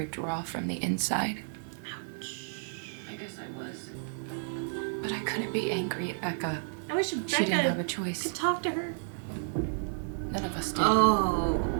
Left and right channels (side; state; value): left; silent; 57 dB below the other